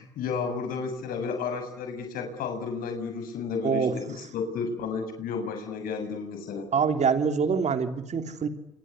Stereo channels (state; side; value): normal; both; correlation 0.40